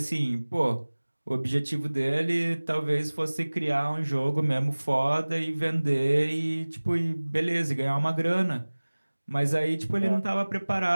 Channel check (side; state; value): both; inverted; correlation -1.00